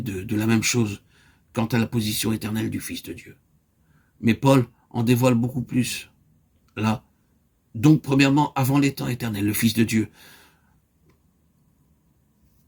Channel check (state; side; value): identical; both; correlation 1.00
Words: de la même chose quant à la position éternelle du Fils de Dieu. Mais Paul en dévoile beaucoup plus. Là, donc premièrement, avant les temps éternels, le Fils de Dieu,